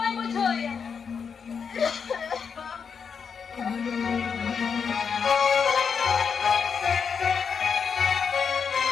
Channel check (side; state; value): right; quieter; 6.3 dB